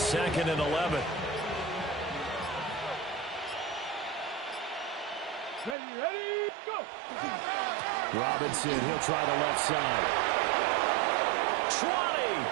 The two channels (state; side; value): drops out; left; at 5.8 s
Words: 2nd and 11. Ready, go. Robinson, he'll try the left side. 20!